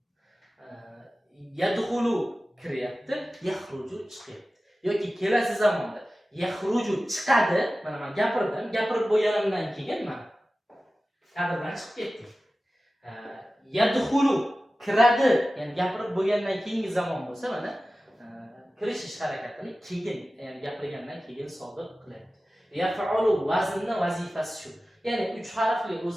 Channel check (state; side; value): normal; both; correlation 0.96